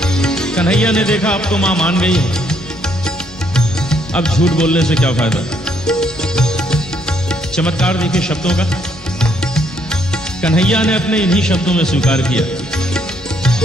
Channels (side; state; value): both; normal; correlation 0.70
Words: कन्हैया ने देखा अब तो मां मान गई है, अब झूठ बोलने से क्या फायदा। चमत्कार देखिए शब्दों का। कन्हैया ने अपने इन्हीं शब्दों में स्वीकार किया।